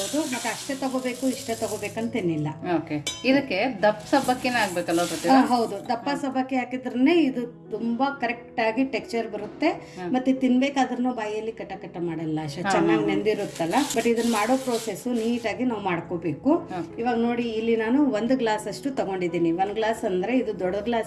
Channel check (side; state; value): both; identical; correlation 1.00